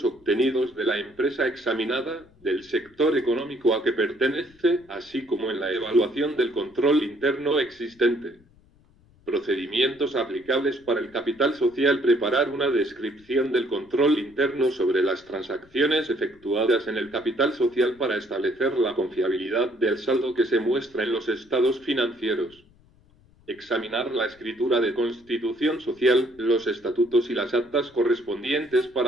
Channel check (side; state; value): left; noise; rumble, 29 dB below the sound